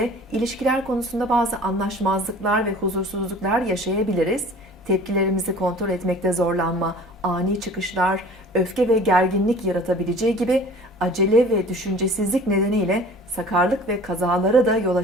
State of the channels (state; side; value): normal; both; correlation 0.45